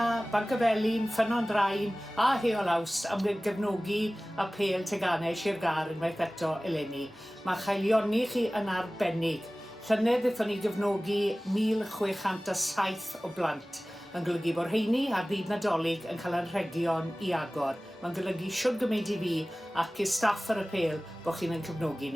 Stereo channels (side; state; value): both; normal; correlation 0.98